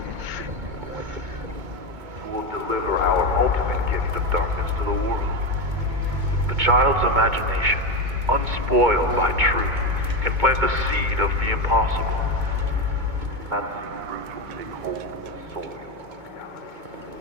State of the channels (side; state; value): left; late; 2.2 ms